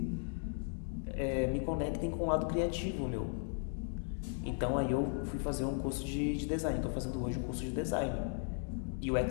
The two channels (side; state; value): right; silent; 53 dB below the other